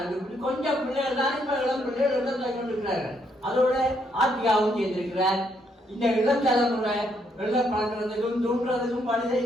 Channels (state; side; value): normal; both; correlation 0.73